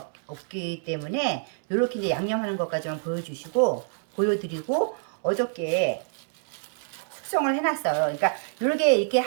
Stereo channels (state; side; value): silent; left; digital silence